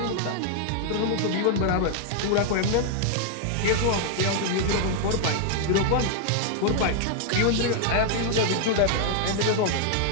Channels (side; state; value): both; different; correlation 0.00